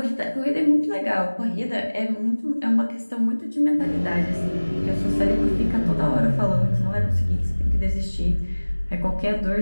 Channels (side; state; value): both; inverted; correlation -1.00